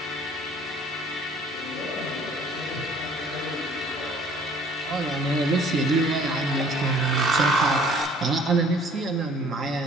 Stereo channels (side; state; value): both; normal; correlation 0.55